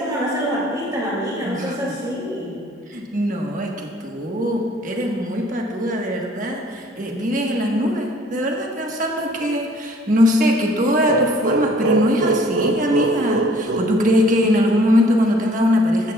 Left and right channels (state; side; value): normal; both; correlation 0.57